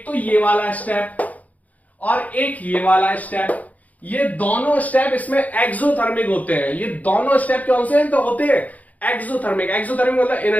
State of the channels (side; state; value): right; late; 0.075 ms